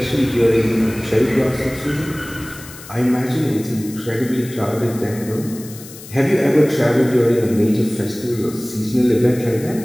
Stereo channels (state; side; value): noise; left; hiss, 17 dB below the sound